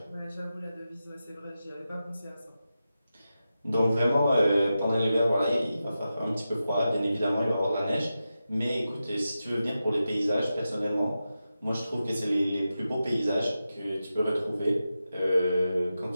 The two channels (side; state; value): both; inverted; correlation -0.91